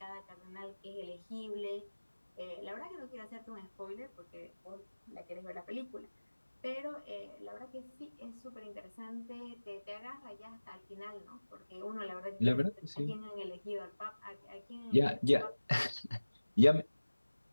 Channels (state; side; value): inverted; both; correlation -1.00